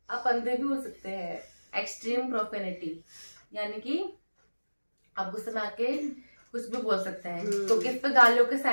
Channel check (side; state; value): both; inverted; correlation -1.00